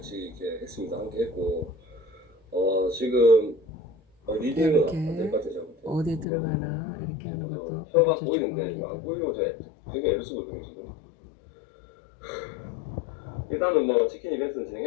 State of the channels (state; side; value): drops out; right; at 6.2 s